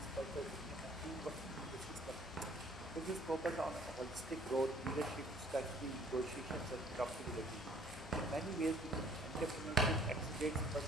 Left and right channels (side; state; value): both; normal; correlation 0.57